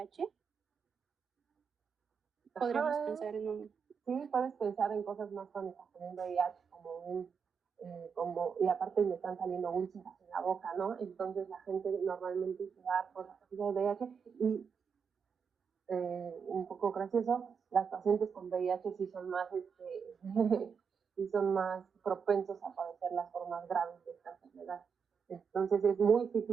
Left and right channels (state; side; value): quieter; left; 6.3 dB